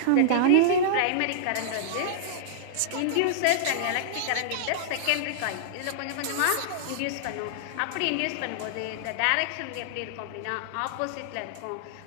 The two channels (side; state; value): both; different; correlation -0.02